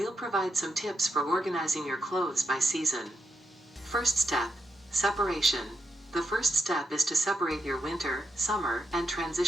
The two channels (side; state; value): both; normal; correlation 0.84